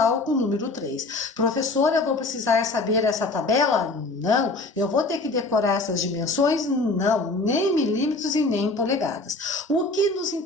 com o número 3. Professora, eu vou precisar saber essa tabela? Não. Eu vou ter que decorar essas dimensões? Não. Nem milímetros e nem polegadas. O que nos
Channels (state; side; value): quieter; right; 3.2 dB